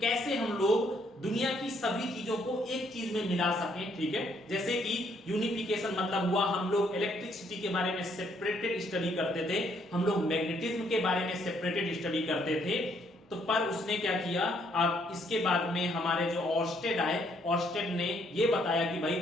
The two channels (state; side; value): normal; both; correlation 0.69